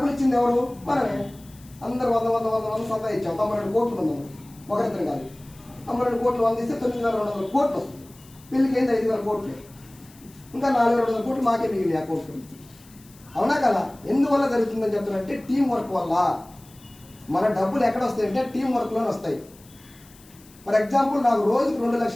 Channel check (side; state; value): left; noise; hiss, 25 dB below the sound